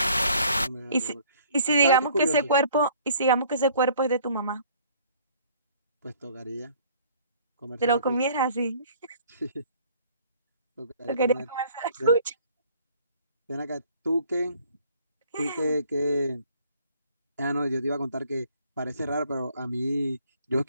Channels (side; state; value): both; inverted; correlation -0.57